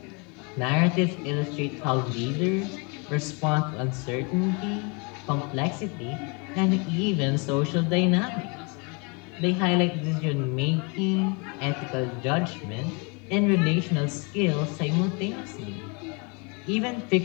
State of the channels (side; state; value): right; quieter; 32.2 dB